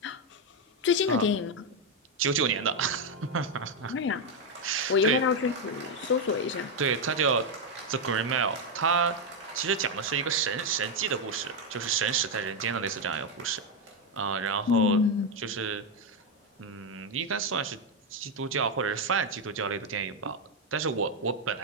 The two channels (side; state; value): both; normal; correlation 0.04